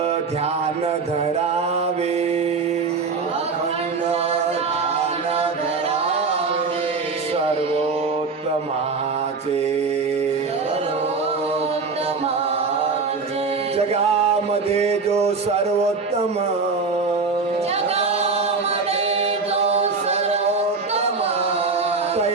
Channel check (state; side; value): quieter; left; 4.5 dB